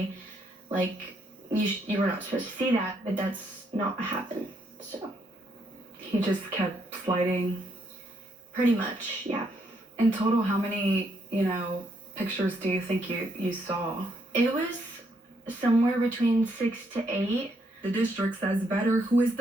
Like, you were not supposed to see that, but that's not what happened. So He just kept sliding. pretty much, yeah. In total, how many, pictures do you think you saw? It was somewhere between 6 to 8. The district says Vetter, who is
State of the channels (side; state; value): both; normal; correlation 0.74